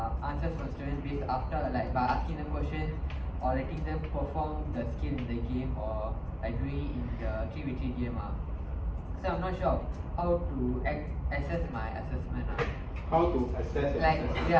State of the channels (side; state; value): both; identical; correlation 1.00